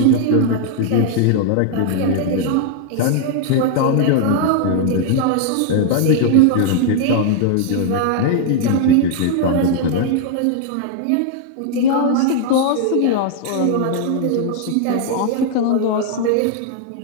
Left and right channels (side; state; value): both; different; correlation 0.00